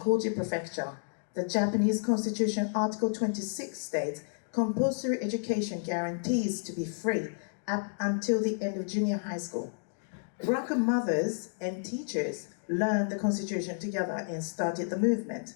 Prefecture. The Japanese Constitution Article 26 states, compulsory education guarantees to be free up until the end of junior high school. Buraku mothers and teachers learned the Constitution together and started the movement.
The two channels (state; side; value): silent; right; digital silence